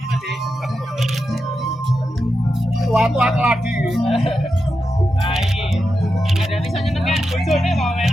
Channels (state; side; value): normal; both; correlation 0.88